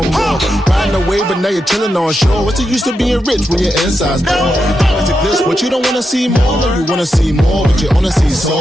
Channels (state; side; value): normal; both; correlation 0.86